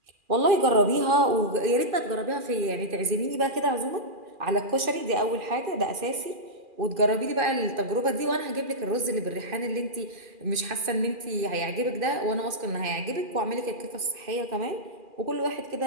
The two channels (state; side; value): late; left; 2.4 ms